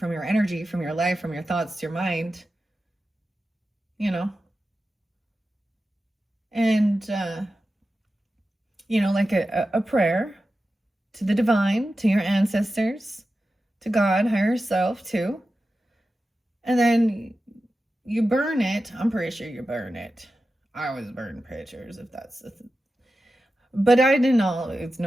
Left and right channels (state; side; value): normal; both; correlation 0.93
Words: your energy, from your life, from your thoughts, your mind, you know. And you know, like a prayer to the divine, to your ancestors, to God, higher self too. And then you burn it. I'm pretty sure you burn it. I always burn pictures if that's the thing. But I didn't always